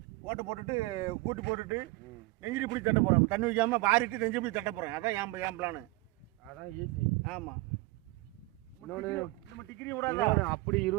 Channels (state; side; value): quieter; left; 21.8 dB